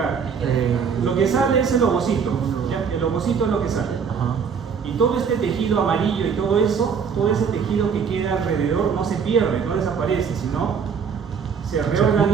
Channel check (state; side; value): quieter; left; 6.4 dB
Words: Lo que sale es el ovocito, ¿ya? El ovocito es lo que sale. Y todo este tejido amarillo y todo eso, todo ese tejido que queda alrededor no se pierde, no desaparece, sino se